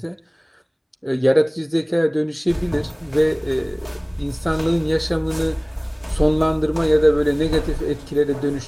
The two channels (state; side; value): identical; both; correlation 1.00